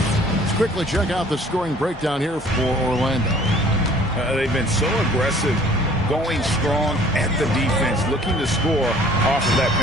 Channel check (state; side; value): normal; both; correlation 0.53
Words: Let's quickly check out the scoring breakdown here for Orlando. They've been so aggressive, going strong at the defense, looking to score off of that